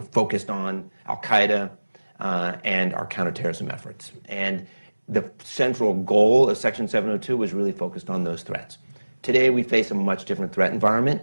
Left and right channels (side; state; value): both; inverted; correlation -1.00